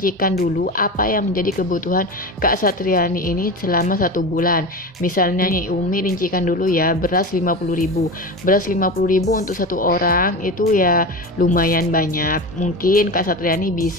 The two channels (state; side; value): normal; both; correlation 0.26